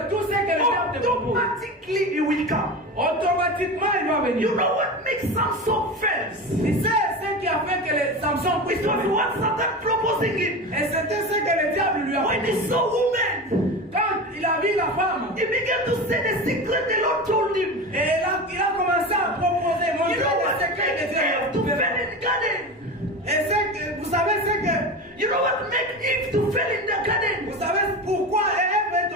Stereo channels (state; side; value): normal; both; correlation 0.26